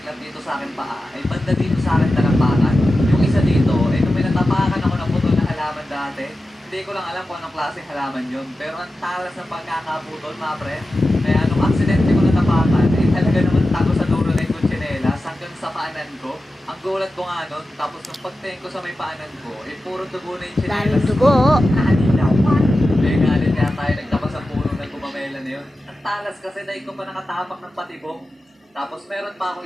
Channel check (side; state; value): both; normal; correlation 0.93